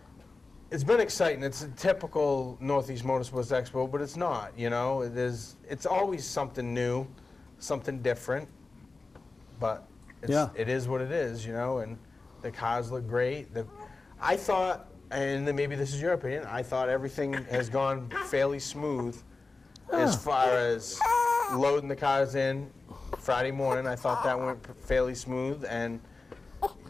exciting. It's a typical Northeast Motorsports Expo, but it's not. You know, it's always something new, something different. But it is what it is, you know. And the cars look great. I thought, and then maybe this is your opinion, I thought everything has gone fairly smooth as far as loading the cars in Friday morning. I thought that went fairly smooth, and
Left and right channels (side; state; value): right; quieter; 3.7 dB